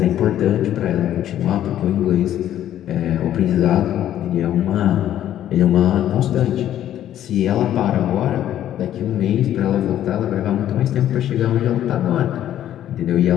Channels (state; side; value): quieter; right; 11.6 dB